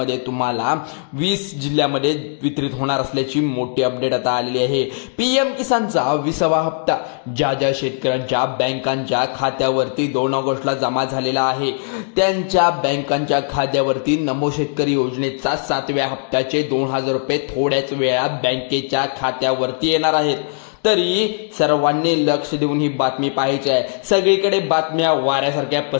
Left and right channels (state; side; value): silent; right; digital silence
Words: तुम्हाला 20 जिल्ह्यामध्ये वितरित होणार असल्याची मोठी अपडेट आता आलेली आहे। पीएम किसानचा 20वा हप्ता ज्या शेतकऱ्यांच्या बँकांच्या खात्यावरती 2 ऑगस्टला जमा झालेला आहे त्यांच्या बँकांच्या खात्यावरती नमो शेतकरी योजनेचा 7व्या हप्त्याचे 2000 रुपये थोड्याच वेळात बँकेच्या खात्यावर वरती येणार आहेत। तरी सर्वांनी लक्ष देऊन ही बातमी पाहायची आहे। सगळीकडे बातम्या वाऱ्यासारख्या